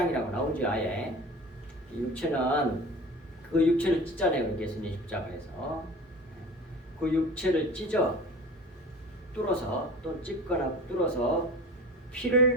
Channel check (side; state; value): both; normal; correlation 0.37